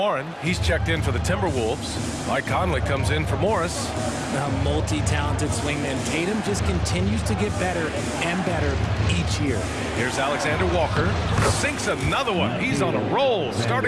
he's checked in for the Timberwolves. Mike Conley comes in for Morris. A multi-talented swingman. Tatum just continues to get better and better each year. Here's Alexander Walker. Sinks another one. He's on a roll,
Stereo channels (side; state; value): both; identical; correlation 1.00